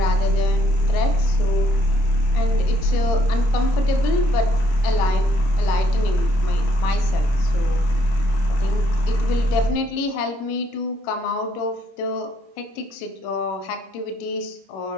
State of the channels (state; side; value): late; right; 26 ms